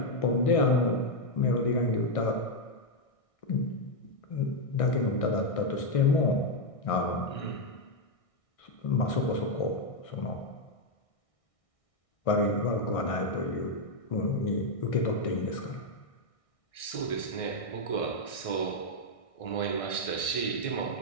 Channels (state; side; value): late; right; 1.6 ms